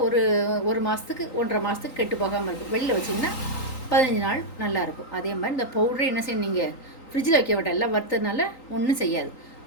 ஒரு மாதத்துக்கு 1.5 மாதத்துக்கு கெட்டு போகாமல் இருக்கும். வெளியில் வச்சிங்கன்னா 15 நாள் நல்லாயிருக்கும். அதே மாதிரி இந்த பவுடரை என்ன செய்யணும், நீங்கள் ஃப்ரிட்ஜில் வைக்க விட்டால் எல்லாம் வறுத்ததுனால ஒன்றும் செய்யாது.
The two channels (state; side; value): late; right; 3.9 ms